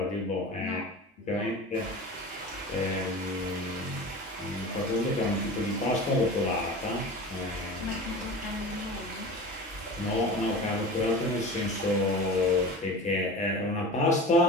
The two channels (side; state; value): both; normal; correlation 0.34